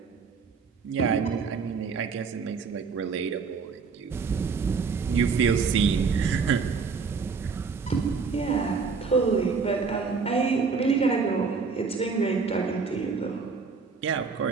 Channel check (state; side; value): quieter; left; 5.2 dB